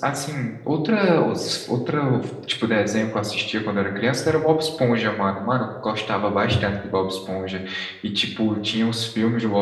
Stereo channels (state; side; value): identical; both; correlation 1.00